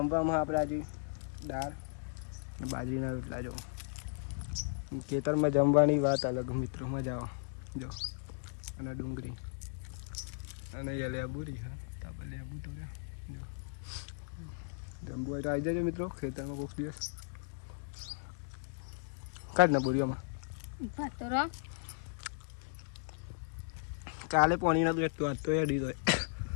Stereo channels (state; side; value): silent; right; digital silence